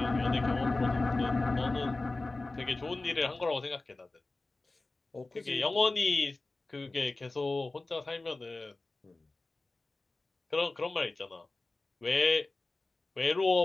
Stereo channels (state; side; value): quieter; right; 3.2 dB